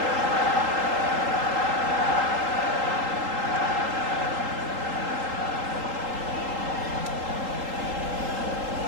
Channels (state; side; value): late; left; 3.8 ms